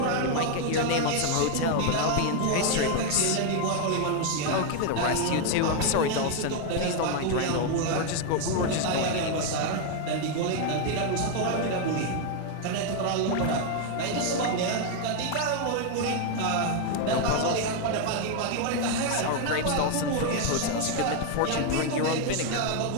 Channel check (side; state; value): both; different; correlation 0.01